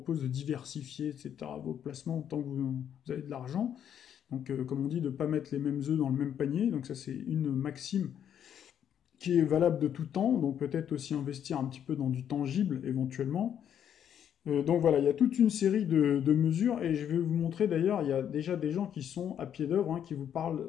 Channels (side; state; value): right; quieter; 9.3 dB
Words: de diversifier, etc., vos placements tant que vous avez de l'argent. Donc, comme on dit, de ne pas mettre les mêmes œufs dans le même panier. Donc ça, c'est une maxime qui est valable de tout temps. Donc peut-être aussi investir un petit peu dans du tangible éventuellement. Donc voilà, il y a toute une série de mesures et je vais vous montrer d'ailleurs, il y a déjà des gens qui sont à pied d'œuvre, hein, qui vous